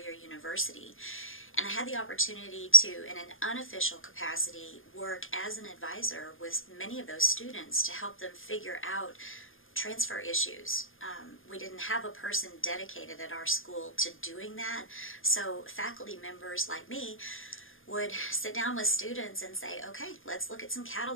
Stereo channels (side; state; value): right; late; 0.59 ms